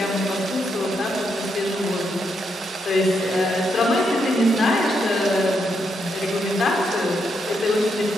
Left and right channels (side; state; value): both; normal; correlation 0.80